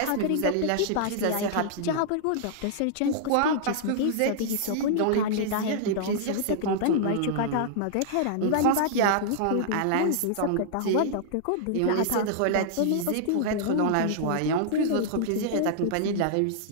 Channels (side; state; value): both; different; correlation -0.01